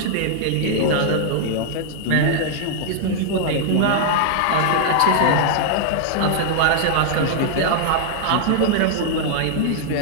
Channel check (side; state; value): both; different; correlation -0.01